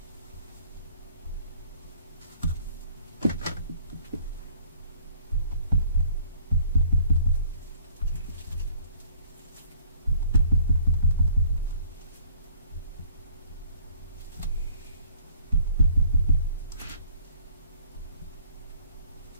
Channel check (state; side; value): inverted; both; correlation -0.55